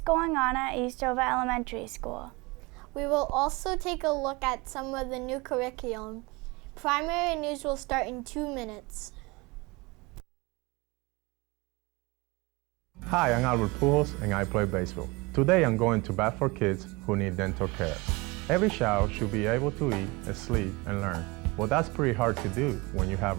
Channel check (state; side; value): quieter; left; 24.6 dB